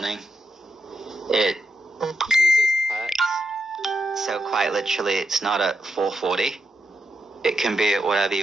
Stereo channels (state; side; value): normal; both; correlation 0.85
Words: It uses hertz, so quite literally it's not at 440. It can be at whatever